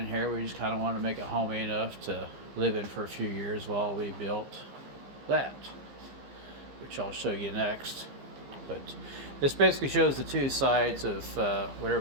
here. We just kind of wanted to make it homey enough to live in for a few years while we built that, which I'll show you next. But this basically shows the two sides of what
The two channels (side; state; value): left; late; 15 ms